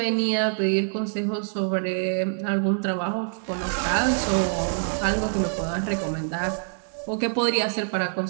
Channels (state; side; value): silent; left; 62 dB below the other